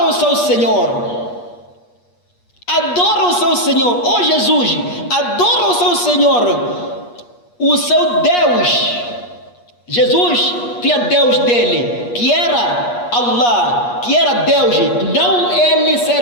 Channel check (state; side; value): late; right; 8.4 ms